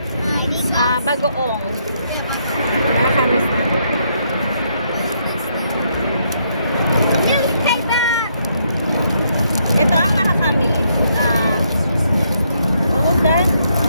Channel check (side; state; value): both; inverted; correlation -0.74